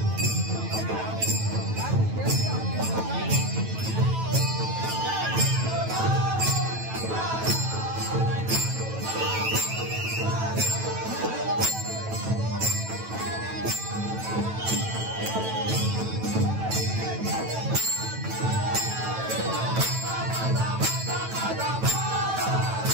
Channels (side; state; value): left; late; 9.1 ms